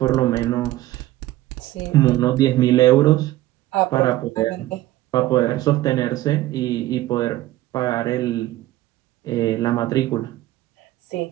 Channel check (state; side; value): quieter; left; 15.9 dB